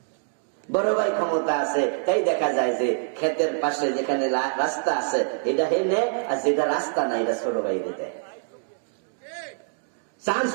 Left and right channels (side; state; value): left; silent; digital silence